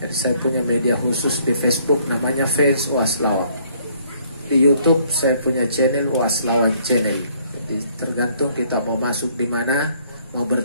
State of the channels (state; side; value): inverted; both; correlation -0.64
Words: Jadi saya punya media khusus di Facebook namanya Fans UAS Lawang. Di YouTube saya punya channel UAS Lawang Channel. Jadi tergantung kita mau masuk di mana, mau